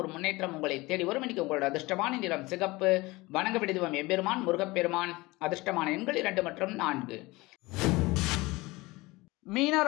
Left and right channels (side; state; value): right; quieter; 21.8 dB